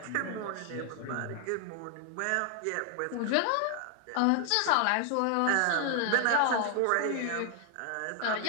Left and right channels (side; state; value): both; different; correlation 0.00